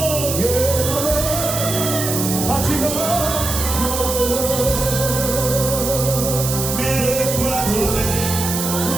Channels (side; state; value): right; noise; hiss, 3 dB below the sound